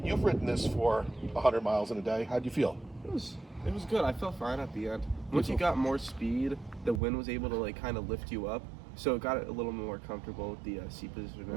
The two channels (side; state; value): left; drops out; at 7.0 s